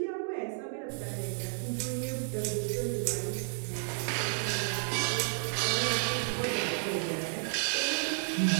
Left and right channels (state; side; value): silent; left; digital silence